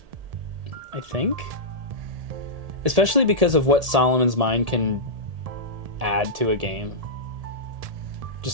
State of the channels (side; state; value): left; late; 1.7 ms